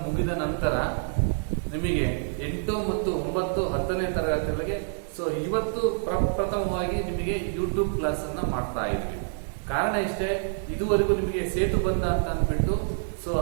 ಮುಗಿದ ನಂತರ ನಿಮಗೆ 8 ಮತ್ತು 9, 10ನೇ ತರಗತಿಗಳಿಗೆ ಸೊ ಇವತ್ತು ಪ್ರಥಮವಾಗಿ ನಿಮಗೆ ಯೂಟ್ಯೂಬ್ ಕ್ಲಾಸ್ ಅನ್ನ ಮಾಡ್ತಾ ಇದ್ವಿ. ಕಾರಣ ಇಷ್ಟೇ, ಇದುವರೆಗೂ ನಿಮಗೆ ಸೇತು ಬಂದ ಅಂತ ಅಂದ್ಬಿಟ್ಟು ಸೊ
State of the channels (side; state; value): left; silent; 60 dB below the other